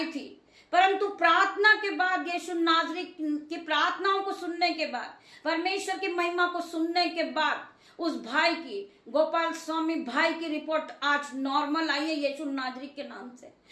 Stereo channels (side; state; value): both; identical; correlation 1.00